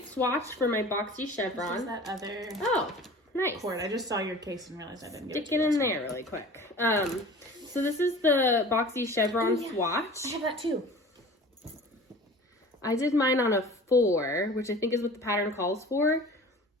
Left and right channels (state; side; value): normal; both; correlation 0.41